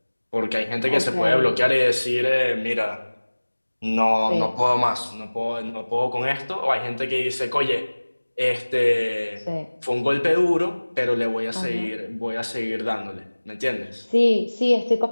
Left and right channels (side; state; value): both; inverted; correlation -1.00